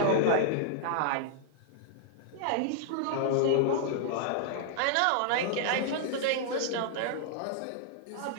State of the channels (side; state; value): both; different; correlation -0.01